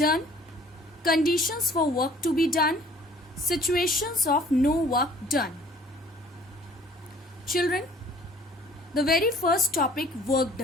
conditions for work to be done, situations of no work done. Children, the very first topic, work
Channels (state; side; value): normal; both; correlation 0.53